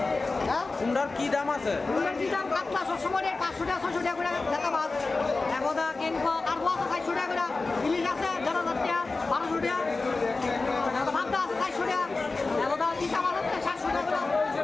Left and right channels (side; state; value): right; quieter; 3.6 dB